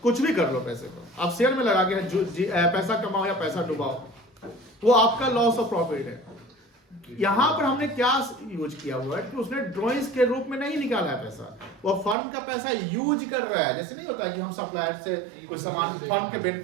कुछ भी कर लो पैसे को, आप शेयर में लगा के पैसा कमाओ या पैसा डुबाओ, वो आपका लॉस ऑफ प्रॉफिट है। यहाँ पर हमने क्या यूज किया हुआ है कि उसने ड्राइंग्स के रूप में नहीं निकाला है पैसा, वो फर्म का पैसा यूज कर रहा है। जैसे नहीं होता है कि हम सप्लायर से कोई सामान फर्म के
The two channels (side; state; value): left; drops out; at 12.2 s